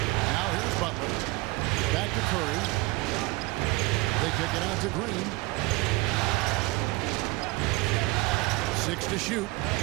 here's Butler. Back to Curry. They kick it out to Green. 6 to shoot.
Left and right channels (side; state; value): left; quieter; 23.2 dB